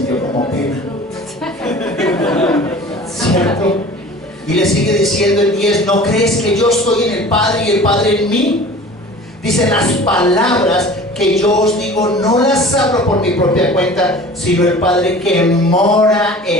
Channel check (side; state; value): both; normal; correlation 0.42